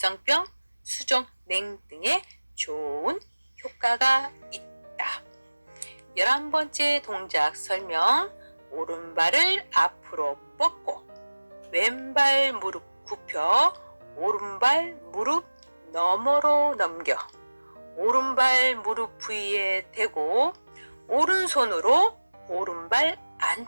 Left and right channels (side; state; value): both; inverted; correlation -1.00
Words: 수족냉 등의 좋은 효과가 있다. 11번째 동작 설명. 오른발을 앞으로 뻗고 왼발 무릎 굽혀 오른발 무릎 너머로 넘겨 오른발 무릎 부위에 대고 오른손으로 오른발